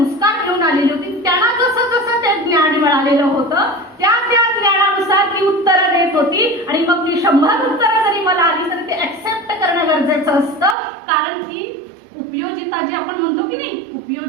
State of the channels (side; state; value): left; drops out; at 10.8 s